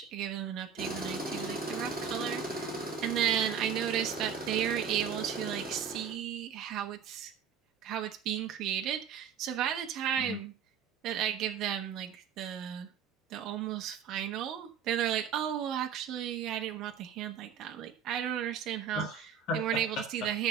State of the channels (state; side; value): quieter; left; 7.7 dB